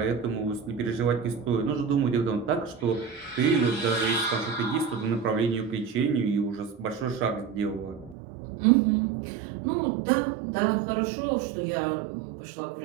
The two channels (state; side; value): drops out; left; at 8.2 s